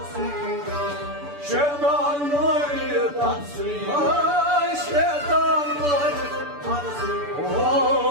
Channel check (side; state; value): left; late; 6.9 ms